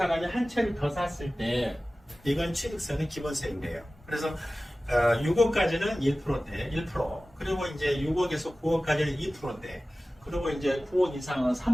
한 채를 더 샀을 때 이건 취득세는 기본세인데요. 그래서 6억까지는 1%인데 1%, 그리고 이제 6억에서 9억까지는 2%인데, 그리고 이제 9억 이상은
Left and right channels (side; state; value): both; normal; correlation 0.96